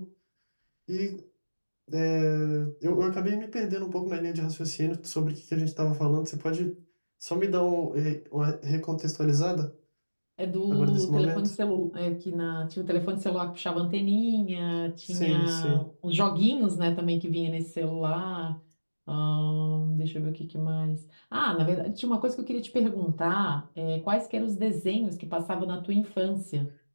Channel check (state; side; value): inverted; both; correlation -1.00